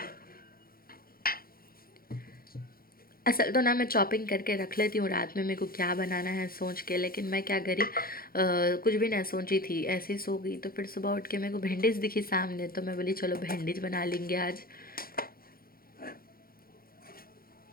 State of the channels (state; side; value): late; right; 0.43 ms